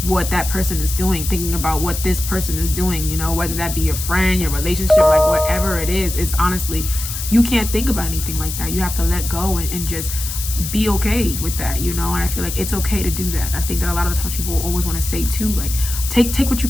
what that person is doing, thinking about what this person is doing, you know, whether that be your friend, your relationship, like whatever it is. It's honestly, you can't think about anything like that. You have to let go and just be okay with that, you know. And I feel like it's okay to do that. I think that a lot of the times people always want to say too, like take what you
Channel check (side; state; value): left; noise; hiss, 6 dB below the sound